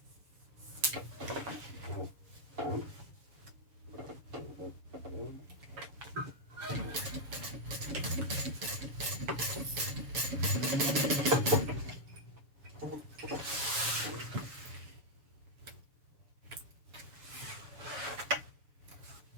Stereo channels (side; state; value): left; late; 6.9 ms